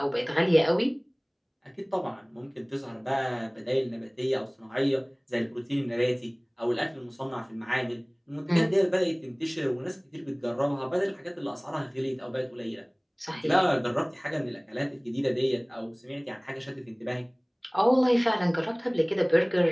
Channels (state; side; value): identical; both; correlation 1.00